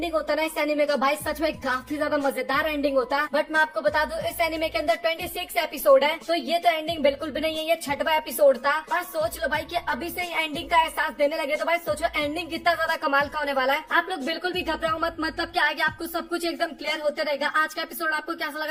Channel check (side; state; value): both; identical; correlation 1.00